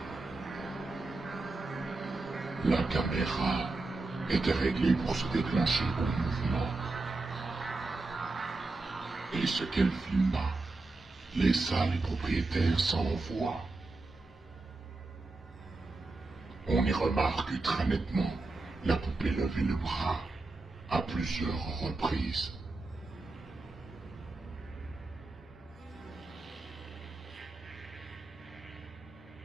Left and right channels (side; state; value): left; quieter; 3.3 dB